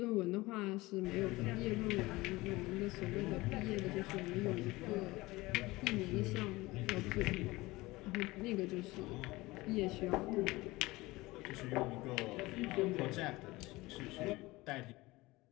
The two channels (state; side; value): quieter; right; 20.6 dB